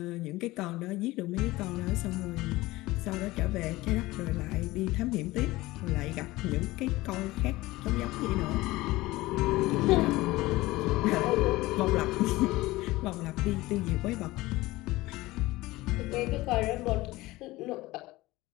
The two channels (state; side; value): quieter; right; 19.1 dB